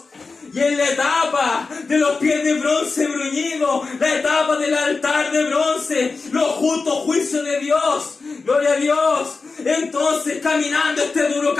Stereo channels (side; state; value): right; quieter; 4.2 dB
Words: y en la etapa de los pies de bronce bruñido, la etapa del altar de bronce, los justos juicios de Dios. Gloria a Dios. Entonces, caminando este duro